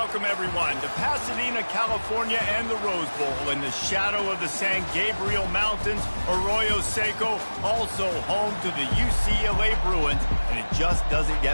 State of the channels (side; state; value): both; inverted; correlation -1.00